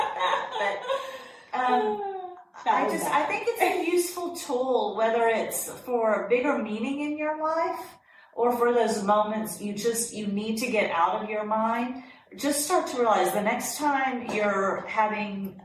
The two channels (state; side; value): identical; both; correlation 1.00